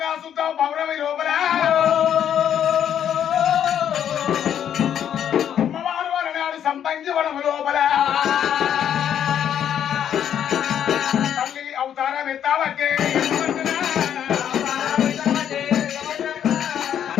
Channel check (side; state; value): right; quieter; 9.5 dB